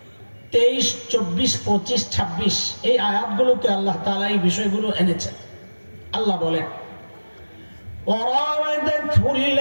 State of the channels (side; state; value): both; inverted; correlation -1.00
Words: 23, 24, 25, 26 এই আয়াতগুলোতে আল্লাহ তাআলা এই বিষয়গুলো এনেছেন। আল্লাহ বলেন, وراودته